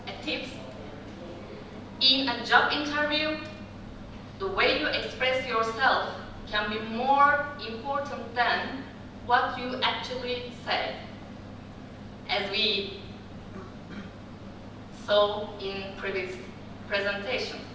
a tip: in a job interview, the way you express yourself can be more important than what you actually say. As we saw in previous presentation.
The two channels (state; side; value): identical; both; correlation 1.00